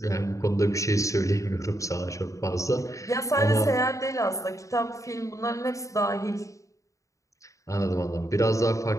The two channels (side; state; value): right; late; 0.15 ms